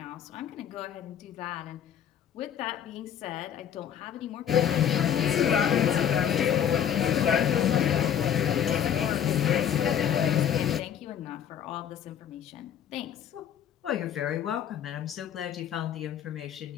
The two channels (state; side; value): quieter; right; 9.2 dB